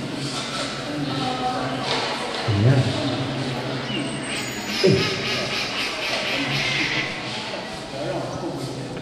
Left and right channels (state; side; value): identical; both; correlation 1.00